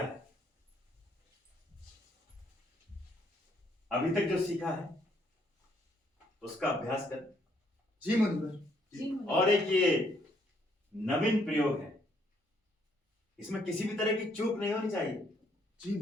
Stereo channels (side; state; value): both; normal; correlation 0.69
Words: अभी तक जो सीखा है उसका अभ्यास कर। जी मुनिवर। और एक ये नवीन प्रयोग है, इसमें किसी भी तरह की चूक नहीं होनी चाहिए। जी